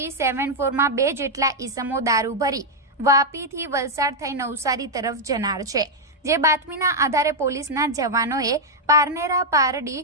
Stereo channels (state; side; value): normal; both; correlation -0.02